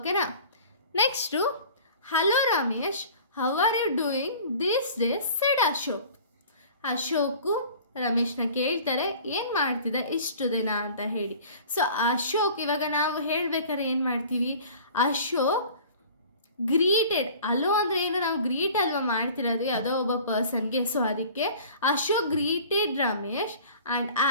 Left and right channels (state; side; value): inverted; both; correlation -0.45